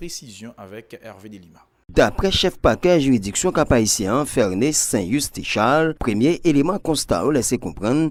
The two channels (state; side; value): identical; both; correlation 1.00